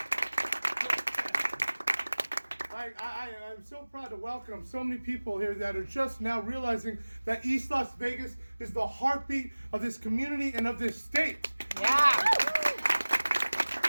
I'm so proud to welcome so many people here that are just now realizing that East Las Vegas is the heartbeat of this community and of this state. Yeah.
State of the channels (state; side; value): inverted; both; correlation -1.00